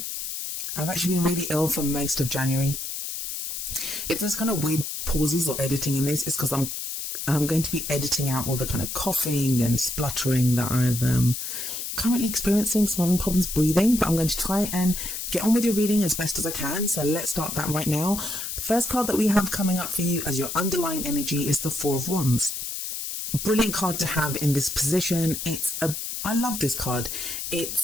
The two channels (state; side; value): noise; left; hiss, 5 dB below the sound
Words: really ill for most of January. If there's kind of weird pauses or editing in this, it's because I'm going to be editing out all the kind of coughing and spluttering that I've currently experiencing. So I'm having problems breathing, but I'm going to try and get on with your reading as best as I can. So let's start that right now. The first card that we have coming up for you as your underlying energy is the Four of Wands. Brilliant card to have in this position. I love this card.